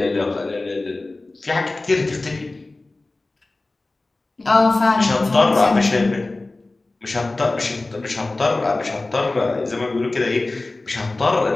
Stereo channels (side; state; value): right; quieter; 3.1 dB